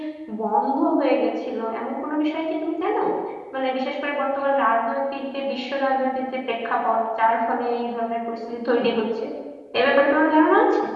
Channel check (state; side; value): identical; both; correlation 1.00